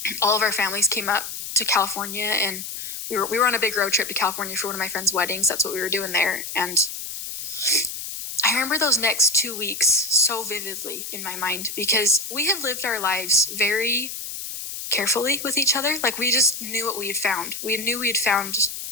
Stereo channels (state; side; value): noise; left; hiss, 7 dB below the sound